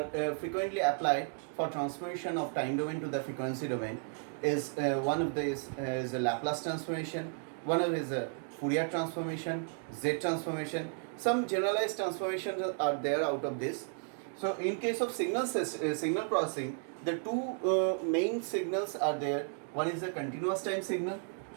frequently applied for transformation of time domain to the frequency domain. One of these is a Laplace transformation. One of is a Fourier transformation, Z transformation. Some generalized transformations are there out of this. So in case of signal processing, the two main signals are there. One is a continuous time signal.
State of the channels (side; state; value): left; silent; 55 dB below the other